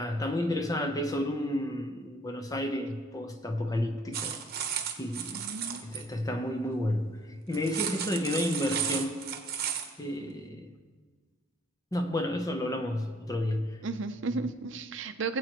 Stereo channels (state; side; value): normal; both; correlation 0.61